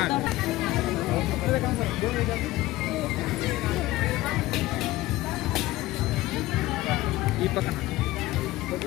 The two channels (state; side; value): quieter; right; 17.5 dB